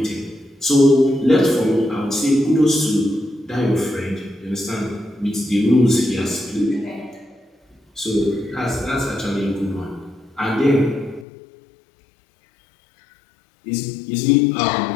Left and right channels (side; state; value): right; drops out; at 11.2 s